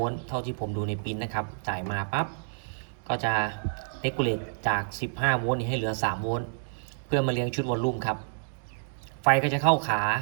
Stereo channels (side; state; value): left; silent; digital silence